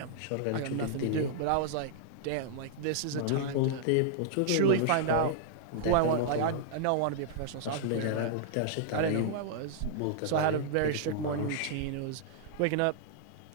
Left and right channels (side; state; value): both; different; correlation -0.01